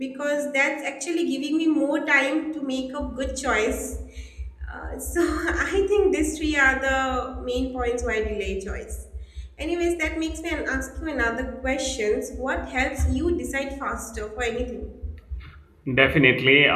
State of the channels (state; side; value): identical; both; correlation 1.00